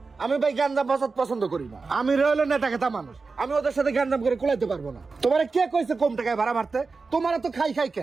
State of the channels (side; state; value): left; quieter; 4.3 dB